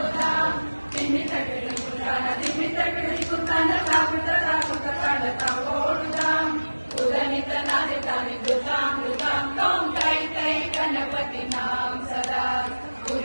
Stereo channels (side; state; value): both; inverted; correlation -1.00